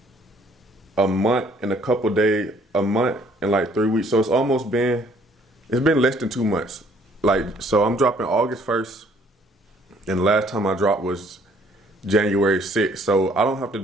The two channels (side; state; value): both; normal; correlation 0.61